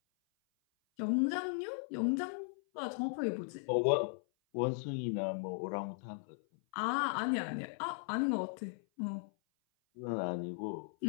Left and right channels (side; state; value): right; silent; 53 dB below the other